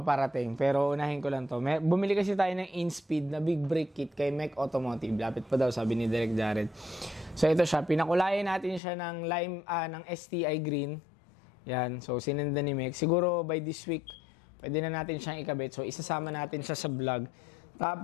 Pero unahin ko lang to. Bumili kasi tayo ng InSpeed na big brake kit kay Mech Automotive. Lapit pa daw, sabi ni Direk Jared. So ito siya. Pinakulayan natin siya ng ng STI green. Yan. So sinenda ni Mech. Siguro by this week, pwede na natin siyang ikabit. So isasama natin siya sa vlog.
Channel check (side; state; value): right; drops out; at 8.8 s